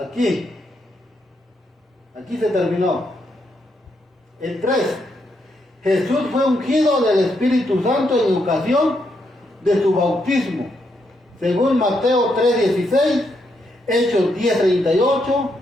se terminó. El 3. Jesús fue ungido del Espíritu Santo en ocasión de su bautismo, según Mateo 3:16, Hechos 10:38,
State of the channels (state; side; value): normal; both; correlation 0.79